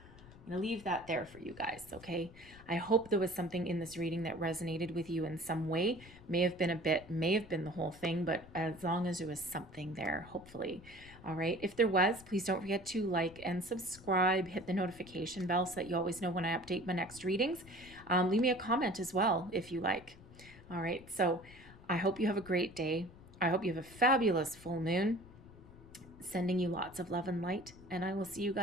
I'm going to leave that there for you guys, okay? I hope there was something in this reading that resonated with you in some way. May have been the whole thing, but as long as there was something there, hopefully. All right. If there was, please don't forget to like and subscribe, hit the notification bell so that you always know when I update my next readings. Leave me a comment as well if you like. All right. So I hope you have a great day. I hope you have a fabulous full moon. Sending you lots of love and light, and I will see you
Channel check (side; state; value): left; noise; rumble, 20 dB below the sound